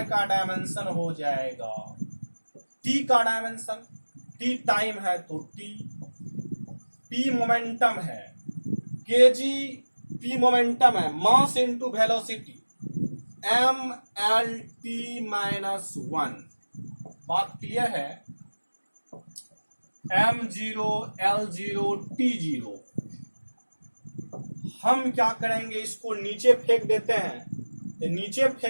का डायमेंशन हो जाएगा टी का डायमेंशन, टी टाइम है तो टी, पी मोमेंटम है, केजी पी मोमेंटम है, mass into velocity M L T minus 1। बात क्लियर है। m0 l0 t0। हम क्या करेंगे, इसको नीचे फेंक देते हैं। तो नीचे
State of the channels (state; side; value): inverted; both; correlation -1.00